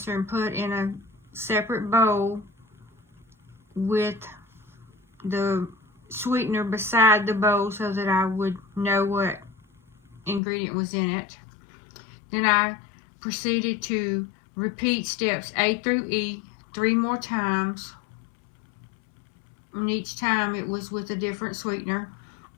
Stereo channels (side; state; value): right; drops out; at 10.4 s